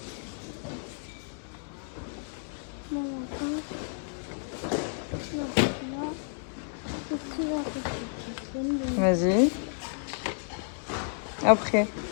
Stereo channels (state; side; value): silent; right; digital silence